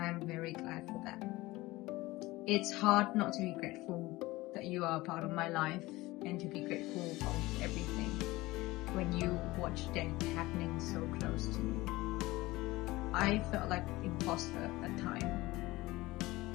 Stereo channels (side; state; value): right; quieter; 19.7 dB